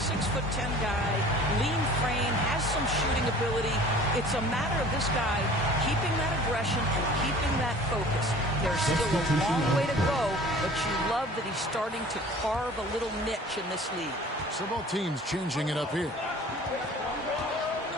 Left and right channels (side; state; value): both; normal; correlation 0.46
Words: guy, lean frame, has some shooting ability. It's a matter of this guy keeping that aggression and keeping that focus. There's still a long way to go, but you love that he's starting to carve a little niche in this league. So both teams changing it up here.